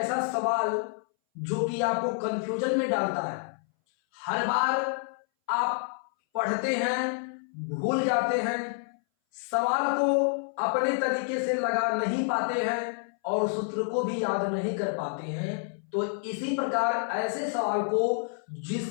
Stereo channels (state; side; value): silent; right; 59 dB below the other